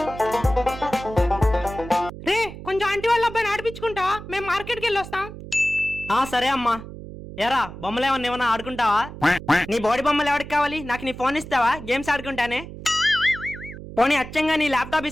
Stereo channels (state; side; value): noise; right; hum, 13 dB below the sound